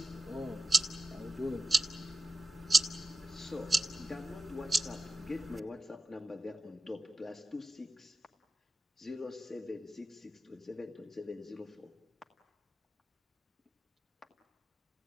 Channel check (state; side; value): normal; both; correlation 0.93